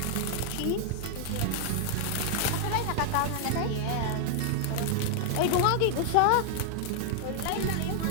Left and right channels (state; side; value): different; both; correlation 0.00